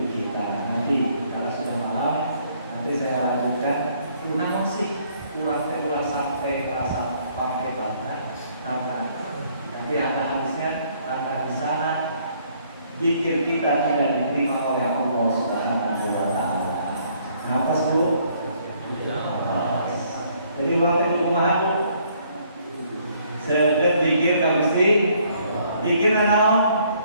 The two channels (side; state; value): both; inverted; correlation -0.65